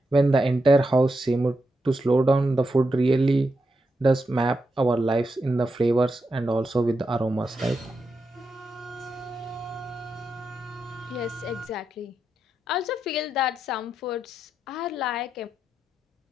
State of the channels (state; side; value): normal; both; correlation 0.85